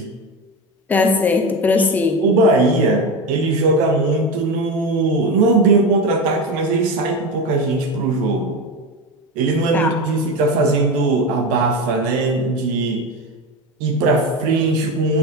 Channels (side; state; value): both; normal; correlation 0.20